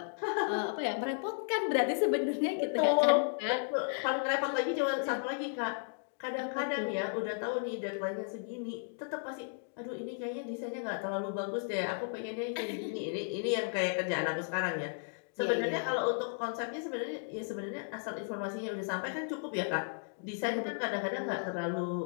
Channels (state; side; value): silent; right; digital silence